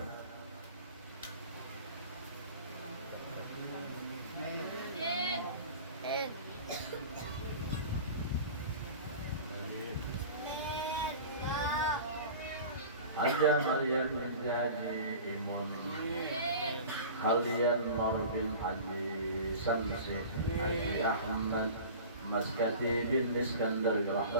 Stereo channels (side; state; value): both; inverted; correlation -0.38